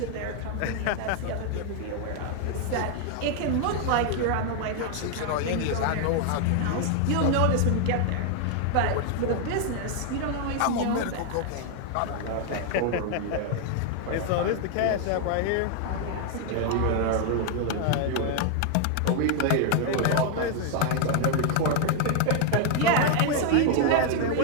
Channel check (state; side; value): different; both; correlation 0.00